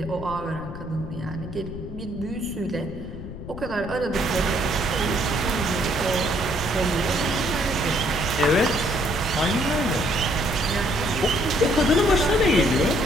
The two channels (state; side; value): noise; left; rumble, 11 dB below the sound